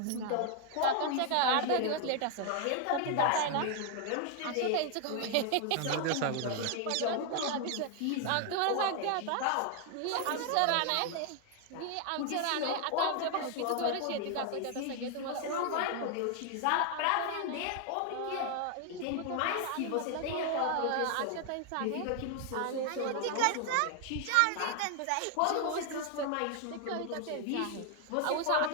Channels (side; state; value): both; different; correlation 0.00